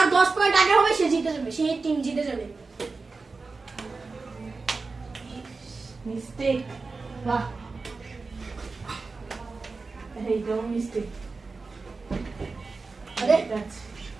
10 পয়েন্ট আগে হবে সে জিতে যাবে, সেই টিম জিতে যাবে। মিস্টেক। বাহ, এই তো মিস্টেক। আরে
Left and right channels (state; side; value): quieter; left; 4.1 dB